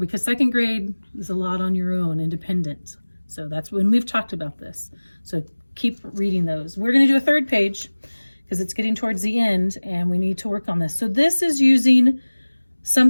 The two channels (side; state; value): both; inverted; correlation -1.00